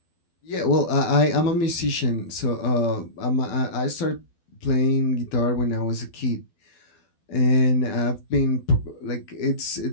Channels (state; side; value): late; right; 12 ms